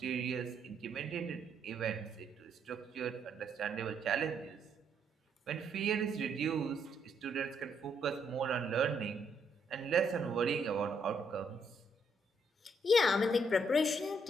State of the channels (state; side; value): normal; both; correlation 0.73